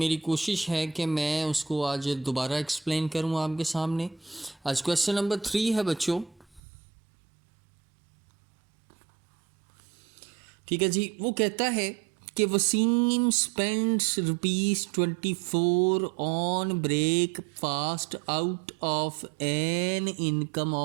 कोशिश है कि मैं उसको आज दोबारा एक्सप्लेन करूँ आपके सामने। आज क्वेश्चन नंबर 3 है बच्चों। ठीक है जी, वो कहता है कि Waseem spends ₹24 on breakfast out of an income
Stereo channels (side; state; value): left; drops out; at 6.6 s